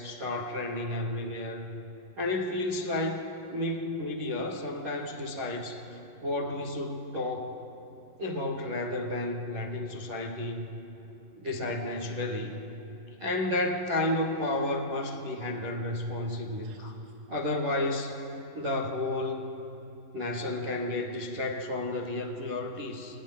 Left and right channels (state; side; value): late; left; 11 ms